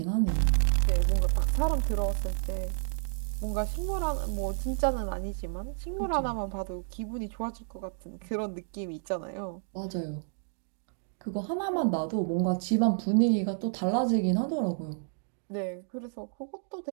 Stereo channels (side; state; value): left; silent; digital silence